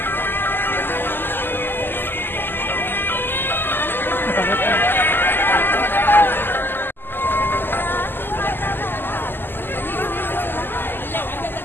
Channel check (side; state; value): right; late; 0.096 ms